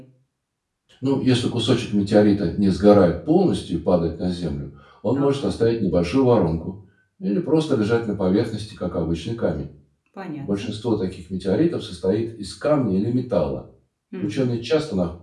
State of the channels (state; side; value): identical; both; correlation 1.00